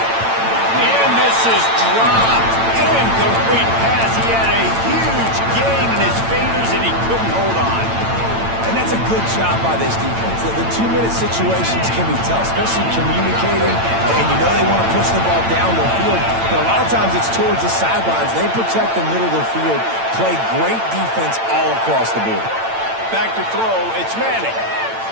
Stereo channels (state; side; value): late; left; 8.9 ms